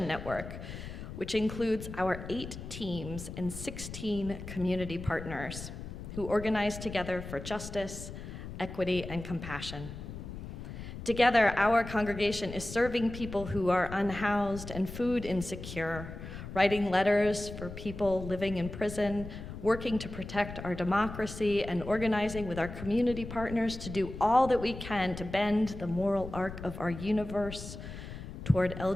Network, which includes our 8 teams and 16 community partners who organize together for justice, equity, and compassion. Together, our congregation is serving people who are unhoused and food insecure, writing letters for people living in prison, working to protect our democracy, and organizing with our community partners to do all that we can to bend the moral arc of our universe toward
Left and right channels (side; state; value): left; noise; rumble, 10 dB below the sound